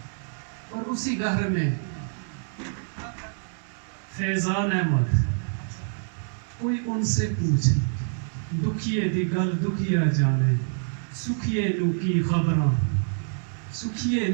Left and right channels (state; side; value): silent; left; digital silence